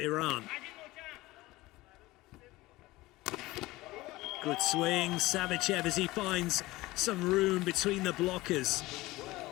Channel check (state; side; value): quieter; right; 19.3 dB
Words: Good swing, Savichev as he finds some room between the blockers.